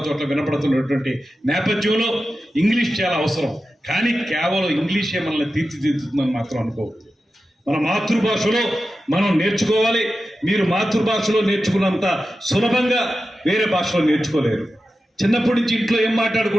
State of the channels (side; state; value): both; normal; correlation 0.92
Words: చోట్ల వినపడుతున్నటువంటి నేపథ్యంలో ఇంగ్లీష్ చాలా అవసరం. కానీ కేవలం ఇంగ్లీషే మనల్ని తీర్చిదిద్దుతుందని మాత్రం అనుకోవద్దు. మన మాతృభాషలో మనం నేర్చుకోవాలి. మీరు మాతృభాషలో నేర్చుకున్నంత సులభంగా వేరే భాషలో నేర్చుకోలేరు. చిన్నప్పటి నుంచి ఇంట్లో ఏం